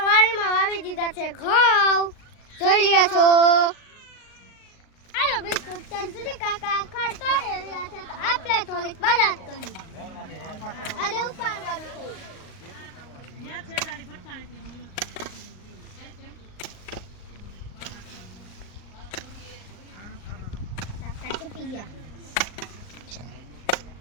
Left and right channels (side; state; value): right; late; 38 ms